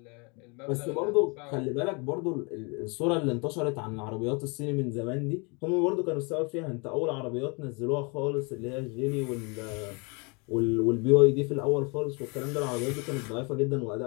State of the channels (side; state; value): right; quieter; 31.4 dB